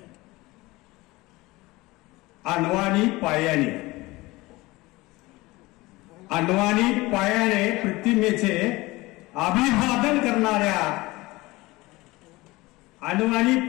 अण्वानी पायाने, अण्वानी पायाने प्रतिमेचे अभिवादन करणाऱ्या, अण्वानी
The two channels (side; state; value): right; quieter; 21.0 dB